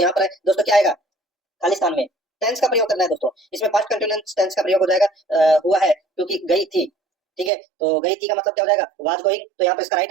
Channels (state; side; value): drops out; left; at 7.5 s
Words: पर दोस्तों क्या आएगा, खालिस्तान में टेंस का प्रयोग करना है दोस्तों, इसमें पास्ट कंटिन्यूअस टेंस का प्रयोग हो जाएगा, हुआ है क्योंकि गई थी, ठीक है। तो गई थी का मतलब क्या हो जाएगा, वाज गोइंग। तो यहाँ पर इसका राइट